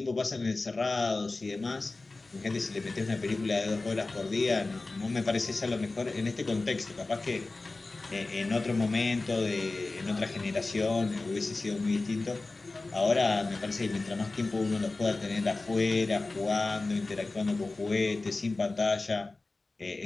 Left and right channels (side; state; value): right; quieter; 3.3 dB